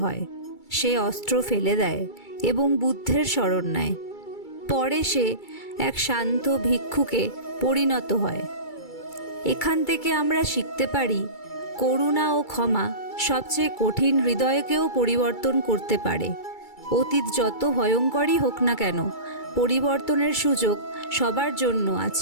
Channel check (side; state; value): right; late; 2.3 ms